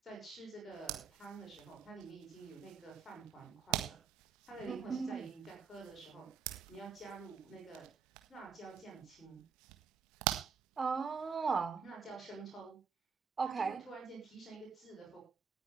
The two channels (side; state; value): left; quieter; 6.3 dB